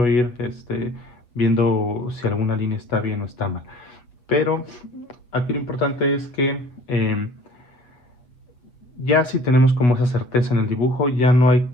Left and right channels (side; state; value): right; late; 7.7 ms